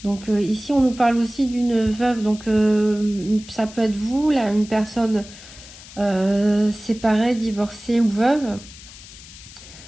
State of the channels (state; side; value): noise; left; hiss, 18 dB below the sound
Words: Donc ici, on nous parle aussi d'une veuve. Donc ça peut être vous, là, une personne séparée, divorcée ou veuve.